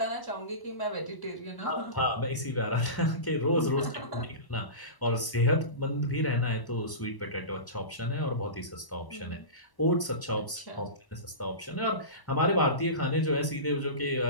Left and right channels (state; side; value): late; right; 1.0 ms